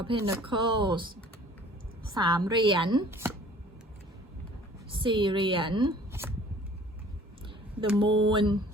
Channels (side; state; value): both; normal; correlation 0.50